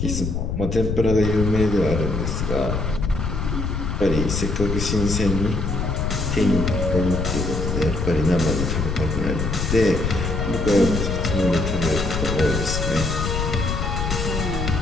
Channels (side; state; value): left; noise; rumble, 1 dB below the sound